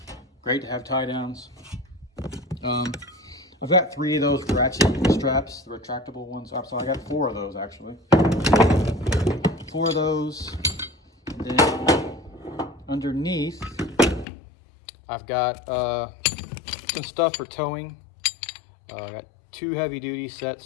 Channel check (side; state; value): right; drops out; at 14.2 s